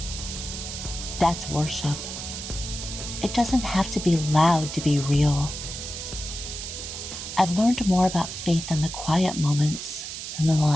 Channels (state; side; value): noise; right; hiss, 7 dB below the sound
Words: that's worship. It doesn't have to be loud to be real. I've learned more about faith in the quiet moments than the